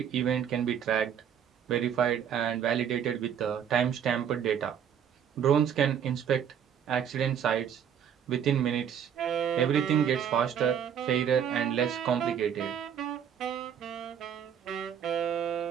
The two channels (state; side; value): quieter; left; 8.6 dB